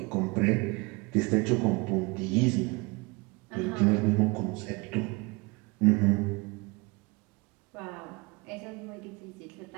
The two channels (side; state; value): left; quieter; 27.2 dB